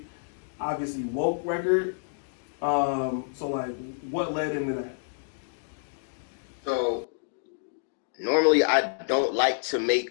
obviously woke record. So like, what led into that? So normally I don't like to make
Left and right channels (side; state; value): right; silent; digital silence